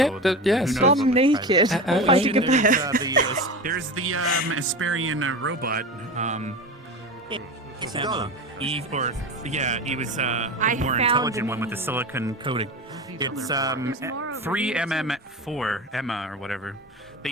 Yeah, so yes. who knows Bum what's naked, private. fighting a bear. There's the Asperian robot. Eve, or yeah, he was the more found intelligent the one with the silicon coating. It's 3MM4 Emma or whatever. They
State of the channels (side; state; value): both; normal; correlation 0.27